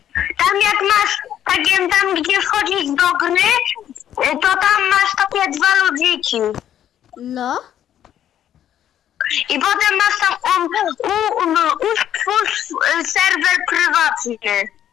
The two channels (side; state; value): right; quieter; 10.7 dB